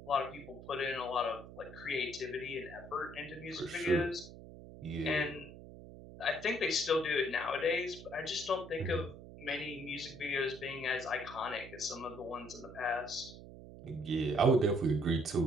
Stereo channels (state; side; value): noise; right; hum, 15 dB below the sound